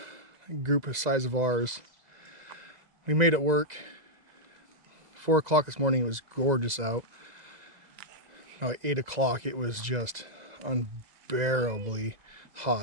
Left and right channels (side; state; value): left; late; 2.0 ms